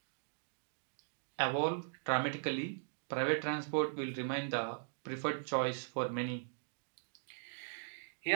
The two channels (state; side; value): silent; left; digital silence